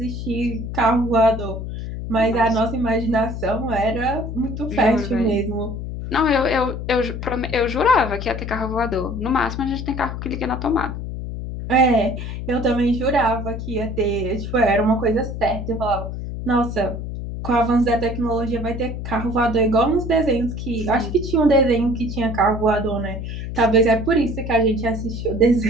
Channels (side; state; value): left; noise; hum, 6 dB below the sound